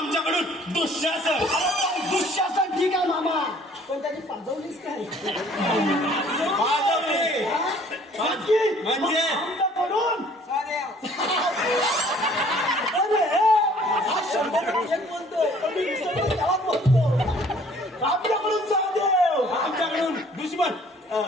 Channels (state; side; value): normal; both; correlation 0.56